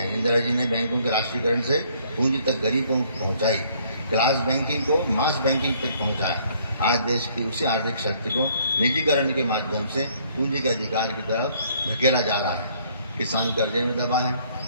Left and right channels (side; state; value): both; inverted; correlation -0.63